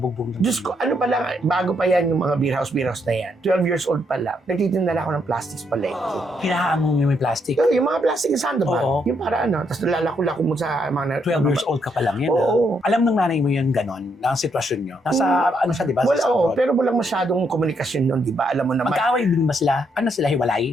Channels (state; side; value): normal; both; correlation 0.75